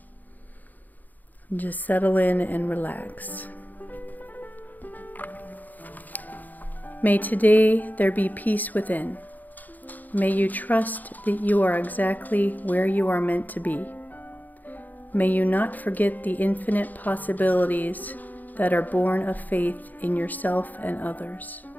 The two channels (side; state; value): right; late; 0.083 ms